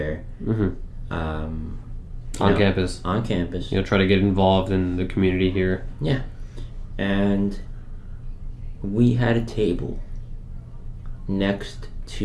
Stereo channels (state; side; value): identical; both; correlation 1.00